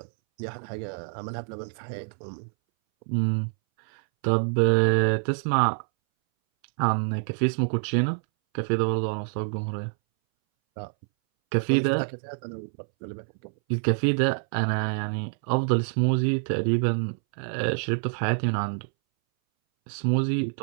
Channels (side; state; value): left; silent; 61 dB below the other